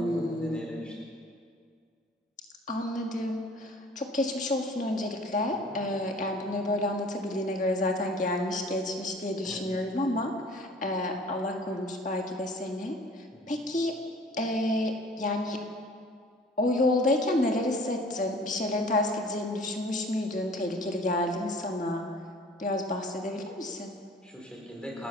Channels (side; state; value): both; normal; correlation 0.49